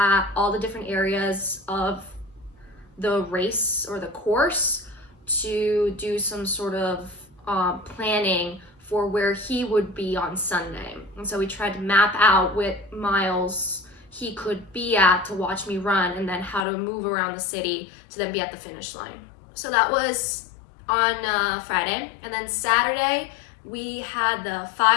all the different areas of the race or the course to do some sort of planning for where he would be on Sunday. And so we tried to map out what miles he could be at to watch me run, and then how to move around the city to then be at the finish line. So that was on Friday, and then Saturday we had the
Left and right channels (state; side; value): drops out; right; at 16.7 s